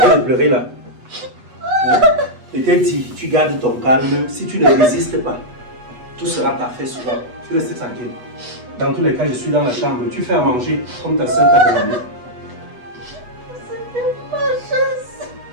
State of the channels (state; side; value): late; left; 8.2 ms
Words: de pleurer là. Hein? Je t'ai dit, tu gardes ton calme. Si tu ne résistes pas, tout sera parfait souvent. Tu restes tranquille. Dans tous les cas, je suis dans la chambre. Tu fais à manger comme ta soeur t'a demandé. C'est ma chance.